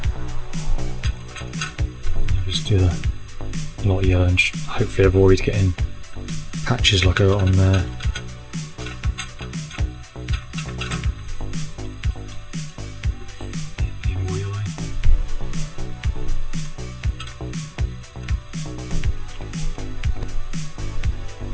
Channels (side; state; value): both; identical; correlation 1.00